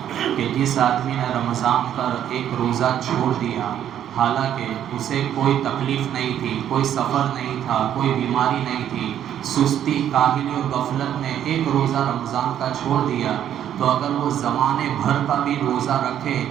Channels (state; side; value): quieter; left; 10.3 dB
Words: کہ جس آدمی نے رمضان کا ایک روزہ چھوڑ دیا، حالانکہ اسے کوئی تکلیف نہیں تھی، کوئی سفر نہیں تھا، کوئی بیماری نہیں تھی، سستی، کاہلی اور غفلت میں ایک روزہ رمضان کا چھوڑ دیا، تو اگر وہ زمانے بھر کا بھی روزہ رکھے